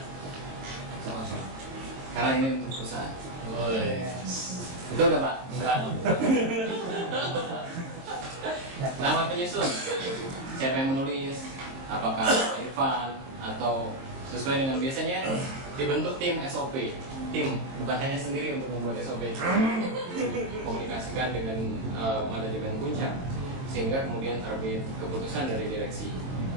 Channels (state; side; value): late; left; 22 ms